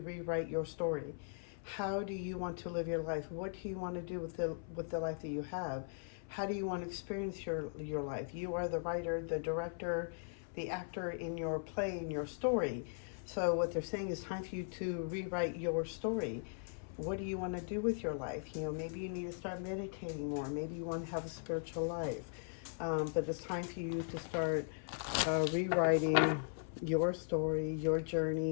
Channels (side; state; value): right; silent; 52 dB below the other